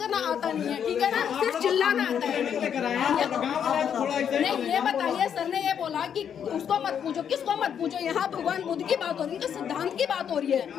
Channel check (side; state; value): right; quieter; 8.3 dB